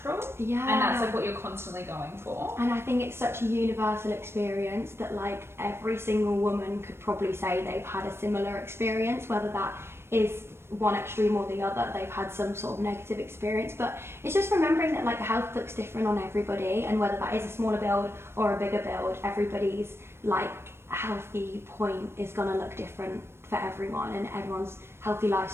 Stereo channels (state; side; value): late; left; 0.12 ms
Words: and that's like what you're constantly going for. And I think it's such a universal experience that like every single woman could probably say they've had a similar experience, whether that is one extreme or the other, they've had some sort of negative experience. But it's just remembering that like health looks different on everybody, and whether that is a smaller build or a bigger build, everybody's like healthy point is going to look different for everyone, and everyone's healthy